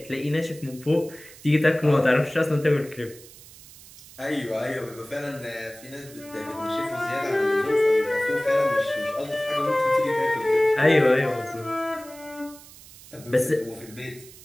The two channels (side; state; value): right; noise; hiss, 20 dB below the sound